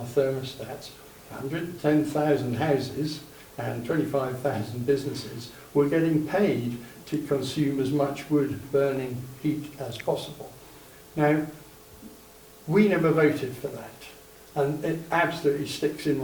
thermostats, 110,000 houses and 25,000 businesses were getting paid to consume as much wood-burning heat as possible. Now, we never voted for that. And it absolutely sticks in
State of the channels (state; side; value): identical; both; correlation 1.00